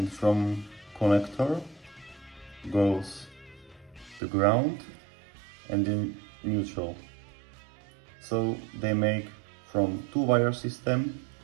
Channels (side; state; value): left; drops out; at 4.2 s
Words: from connector goes the ground and then neutral. So they make from 2-wire system